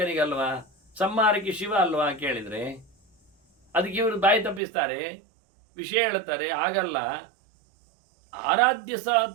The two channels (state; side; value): drops out; left; at 4.6 s